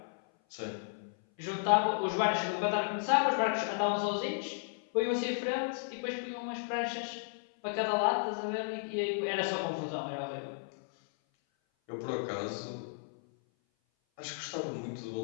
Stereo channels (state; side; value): silent; right; 55 dB below the other